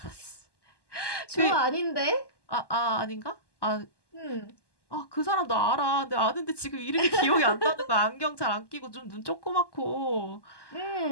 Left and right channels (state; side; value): late; right; 1.1 ms